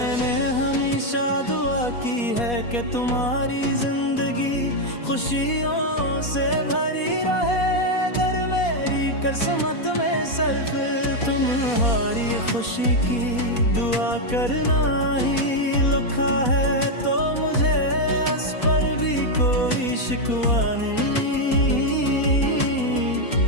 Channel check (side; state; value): right; late; 4.2 ms